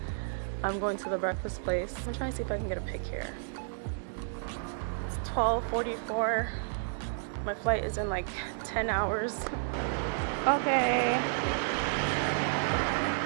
I'm going to the breakfast place. I'm trying to see if I can get a pic here. It's 12:44. My flight is in like 10 hours. Okay.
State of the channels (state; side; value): silent; left; digital silence